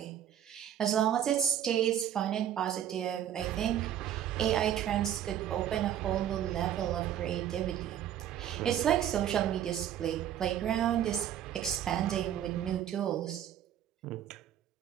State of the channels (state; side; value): quieter; left; 10.6 dB